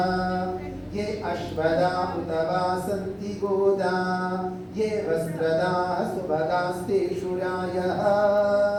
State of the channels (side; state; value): both; identical; correlation 1.00